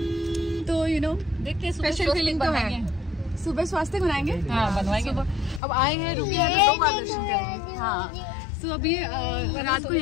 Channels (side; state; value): right; drops out; at 5.6 s